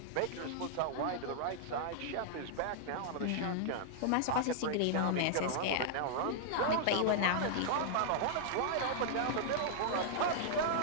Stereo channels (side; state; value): both; different; correlation -0.01